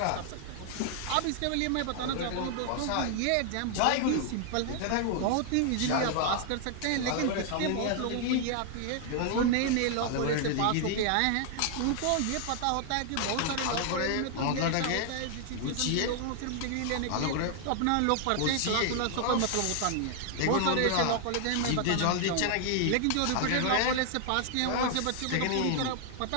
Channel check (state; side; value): different; both; correlation 0.00